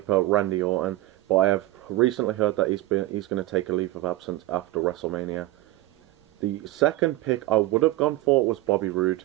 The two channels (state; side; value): quieter; left; 17.3 dB